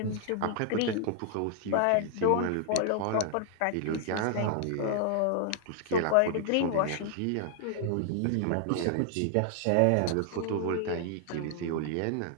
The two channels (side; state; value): both; different; correlation 0.00